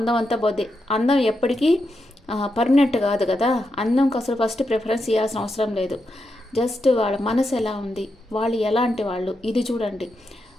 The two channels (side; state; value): both; normal; correlation 0.85